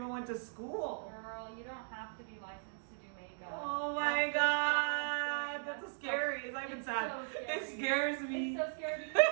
went to school? Girl, you don't have to be licensed to do makeup. Oh my god, that's scary. It's not even sad. So scary. It scares me. It's so scary because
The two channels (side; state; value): left; silent; digital silence